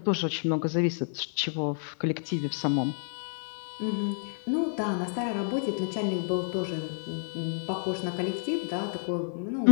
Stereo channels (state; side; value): silent; right; digital silence